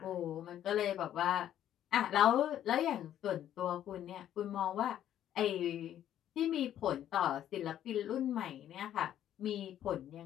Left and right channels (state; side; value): quieter; right; 11.2 dB